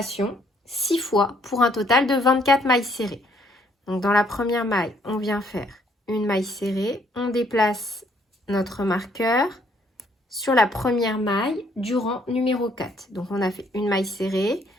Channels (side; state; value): both; normal; correlation 0.66